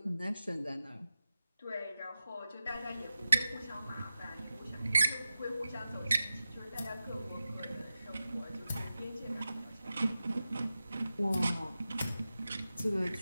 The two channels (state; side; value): inverted; both; correlation -0.93